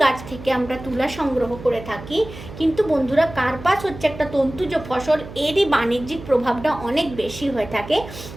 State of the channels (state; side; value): noise; right; hum, 14 dB below the sound